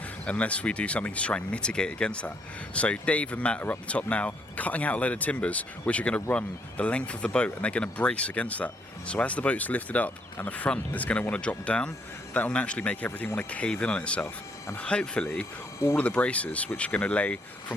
unless we do something to try and mitigate against that. So Dave and Matt are up the top now, cutting out a load of timbers, which are going to run the length of the boat, and they're going to brace against that. So as the boat's lifted up and the front is going to want to drop down, that will naturally make everything want to cave in on itself. And hopefully, all of the braces, which are going to lay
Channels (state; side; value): normal; both; correlation 0.70